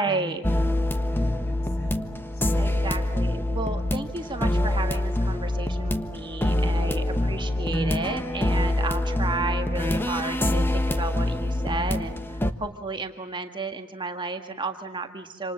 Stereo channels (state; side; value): normal; both; correlation 0.78